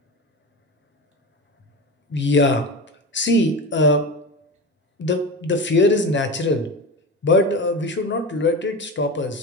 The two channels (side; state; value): both; normal; correlation 0.25